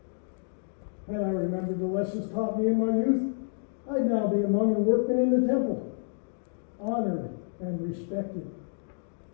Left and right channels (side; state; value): right; silent; 58 dB below the other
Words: Had I remembered the lessons taught me in my youth, I'd now be among the workmen in the temple, honored and respected.